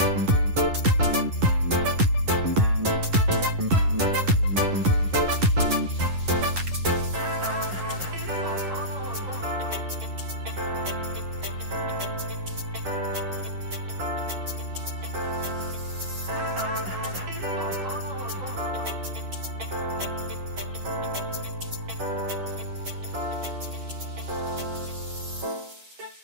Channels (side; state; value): left; late; 11 ms